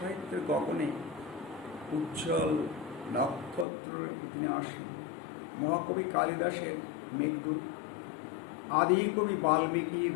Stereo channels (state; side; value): drops out; right; at 3.7 s